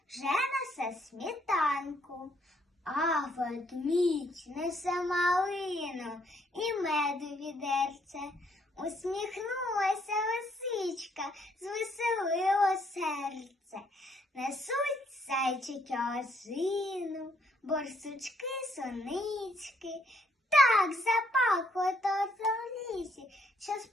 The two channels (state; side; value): normal; both; correlation 0.70